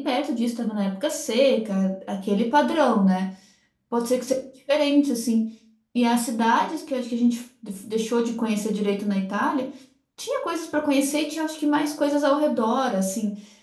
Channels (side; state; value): both; identical; correlation 1.00